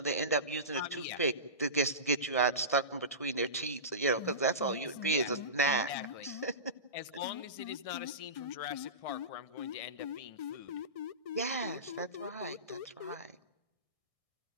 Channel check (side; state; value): right; late; 1.6 ms